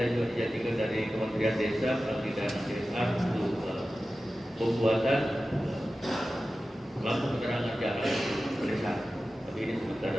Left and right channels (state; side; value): normal; both; correlation 0.94